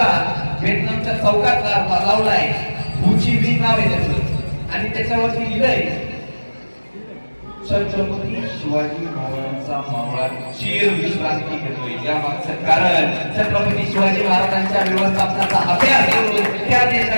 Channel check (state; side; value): inverted; both; correlation -1.00